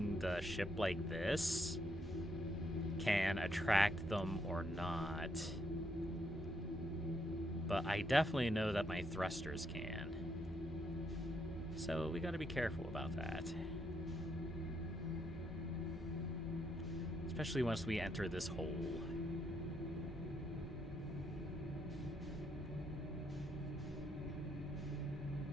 the ship like this can attract them or not. But I definitely know that my thrusters can. So we gotta be careful about that. Especially once we enter this hole.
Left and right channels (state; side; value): normal; both; correlation 0.76